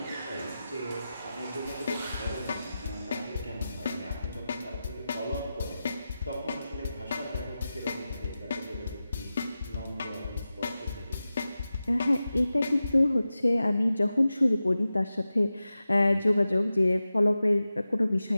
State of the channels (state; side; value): inverted; both; correlation -0.93